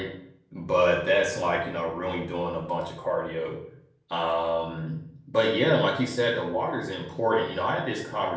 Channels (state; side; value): identical; both; correlation 1.00